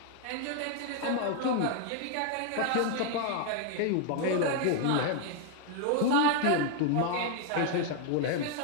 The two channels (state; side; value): different; both; correlation 0.00